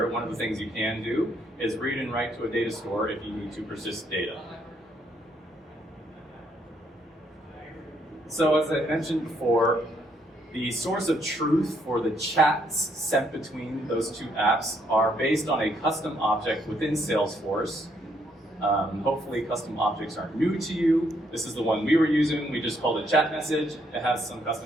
one of the things you can do is read and write to a data store if you need to persist data. So as I mentioned before, the source of truth for the chats sent between those two apps are based on a custom object within Salesforce. Hopefully custom objects aren't new to you. This is the one we were using. We just called it chat message. It has some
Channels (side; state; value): both; normal; correlation 0.72